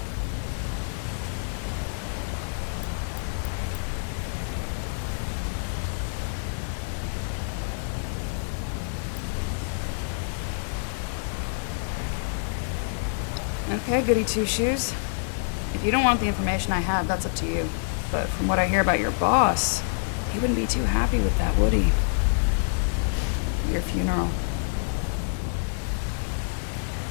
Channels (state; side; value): silent; right; digital silence